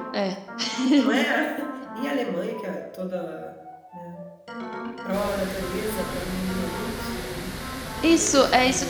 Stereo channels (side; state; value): both; identical; correlation 1.00